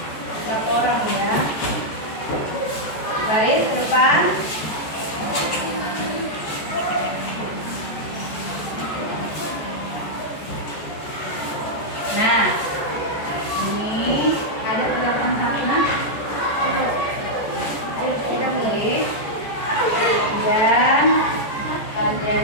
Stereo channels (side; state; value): right; late; 14 ms